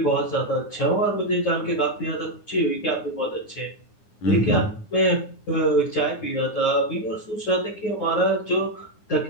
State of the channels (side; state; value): right; late; 9.7 ms